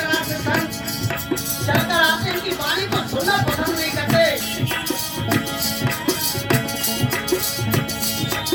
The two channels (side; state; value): both; identical; correlation 1.00